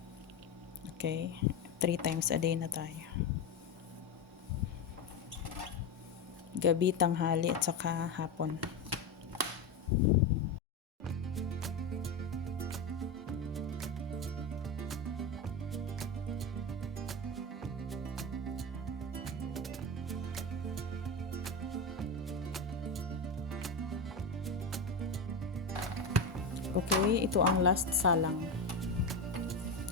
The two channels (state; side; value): quieter; right; 3.3 dB